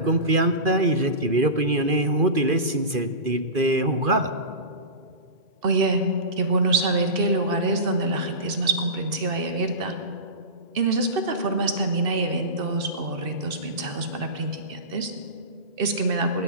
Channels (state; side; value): late; left; 2.4 ms